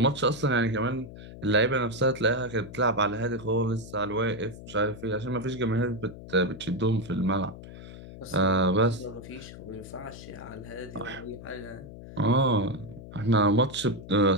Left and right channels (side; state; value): left; noise; hum, 14 dB below the sound